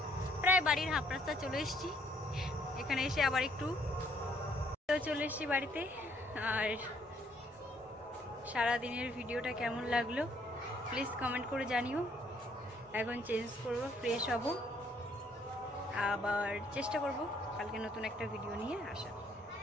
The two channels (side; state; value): both; normal; correlation 0.67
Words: প্রায় বাড়ির হাফ রাস্তা চলে এসেছি। এখানে এসে আবার একটু চলে এসেছি বাড়িতে। আর সারাদিনের ভিডিওটা কেমন লাগলো প্লিজ কমেন্ট করে জানিও। এখন চেঞ্জ করব, ফ্রেশ হব, আবার চেষ্টা করব কালকে নতুন একটা ভিডিও নিয়ে আসা।